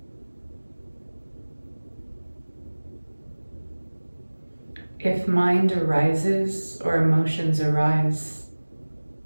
If mind arises or emotions arise,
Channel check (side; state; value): both; inverted; correlation -1.00